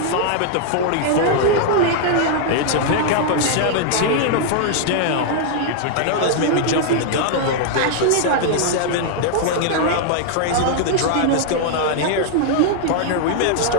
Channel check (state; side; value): different; both; correlation -0.01